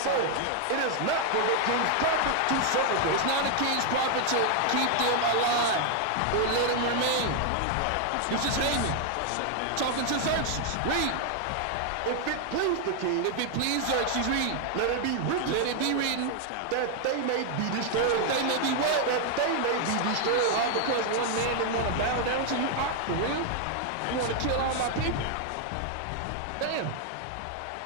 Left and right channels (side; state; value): both; different; correlation 0.00